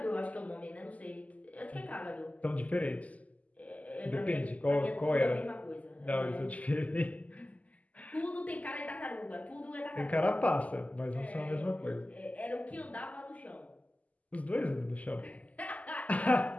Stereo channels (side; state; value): right; late; 0.074 ms